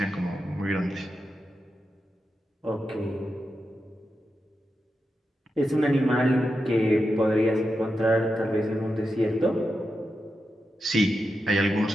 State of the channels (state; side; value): normal; both; correlation 0.88